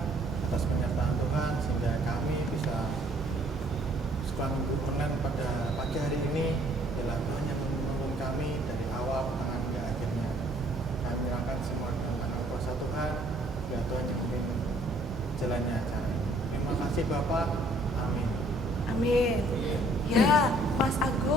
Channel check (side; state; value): both; normal; correlation 0.61